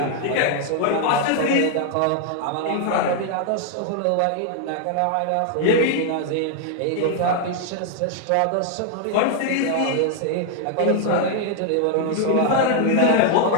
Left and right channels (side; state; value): both; different; correlation 0.00